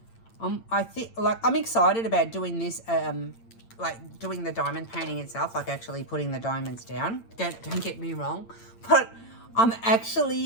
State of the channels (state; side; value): late; right; 8.8 ms